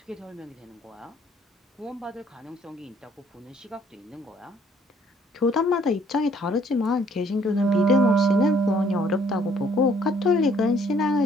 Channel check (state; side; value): normal; both; correlation 0.62